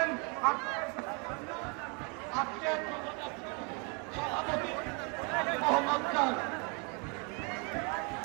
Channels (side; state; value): left; quieter; 32.4 dB